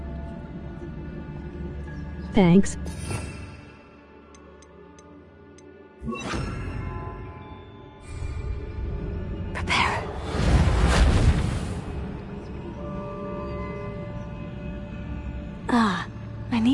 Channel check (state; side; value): identical; both; correlation 1.00